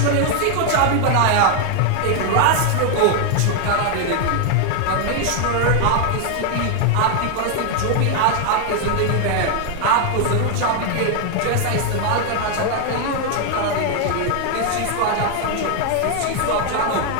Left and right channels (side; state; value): both; different; correlation 0.00